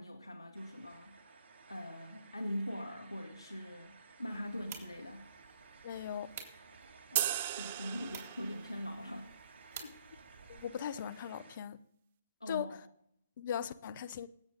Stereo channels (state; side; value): inverted; both; correlation -0.62